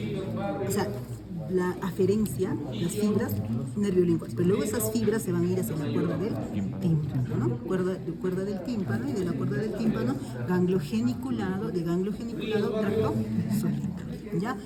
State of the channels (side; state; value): both; identical; correlation 1.00